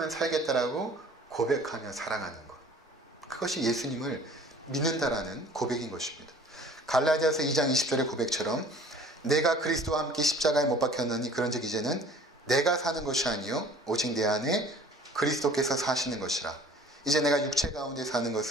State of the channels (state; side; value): normal; both; correlation 0.50